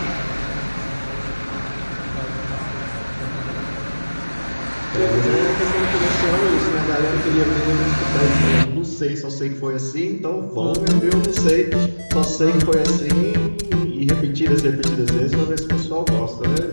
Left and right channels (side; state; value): both; inverted; correlation -1.00